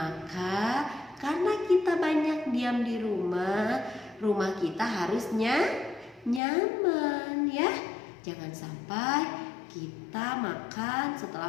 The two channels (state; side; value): drops out; right; at 6.4 s